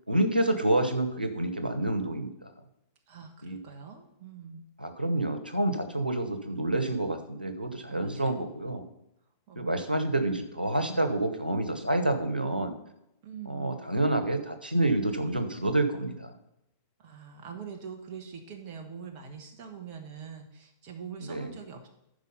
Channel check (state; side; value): inverted; both; correlation -0.76